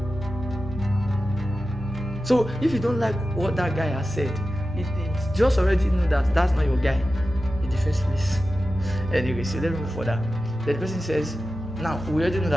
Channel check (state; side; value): normal; both; correlation 0.93